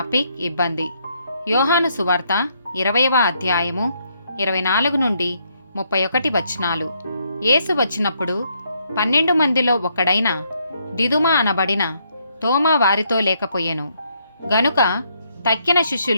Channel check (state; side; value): inverted; both; correlation -0.73